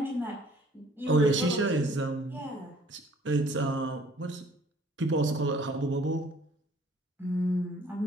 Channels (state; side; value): normal; both; correlation 0.57